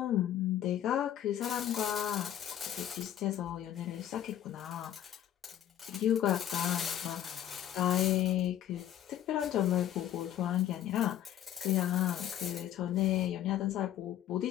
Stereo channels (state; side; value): quieter; right; 11.2 dB